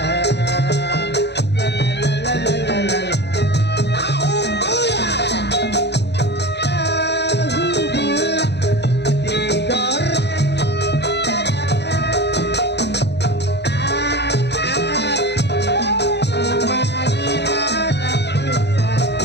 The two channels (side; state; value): right; late; 0.50 ms